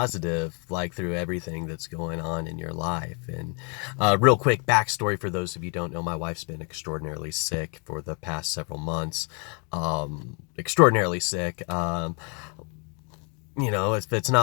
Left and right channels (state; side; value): quieter; right; 35.2 dB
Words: like through everything that's going on in your life?" And real quick backstory for those of you who don't know, my wife's been extraordinarily sick for the past several months. Extraordinarily sick. If it's